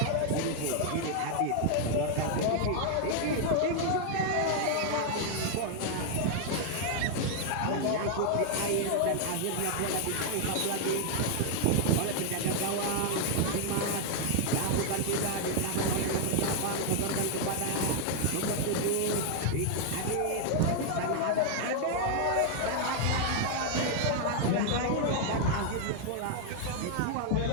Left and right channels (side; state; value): both; different; correlation 0.00